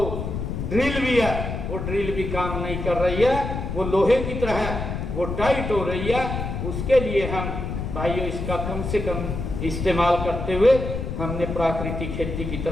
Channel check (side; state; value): left; noise; rumble, 4 dB below the sound